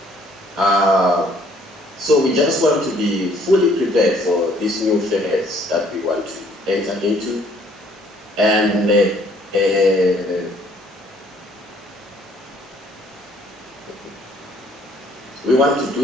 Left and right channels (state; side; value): normal; both; correlation 0.61